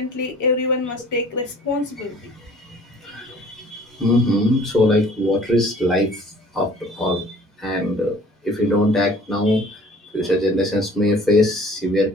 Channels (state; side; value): normal; both; correlation 0.51